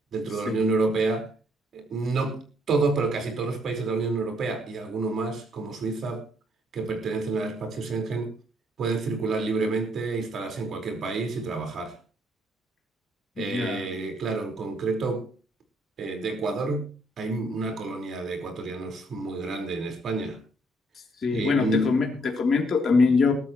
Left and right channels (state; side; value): normal; both; correlation 0.69